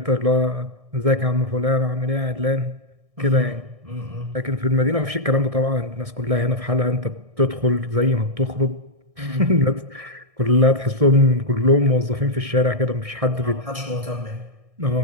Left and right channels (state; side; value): late; left; 1.6 ms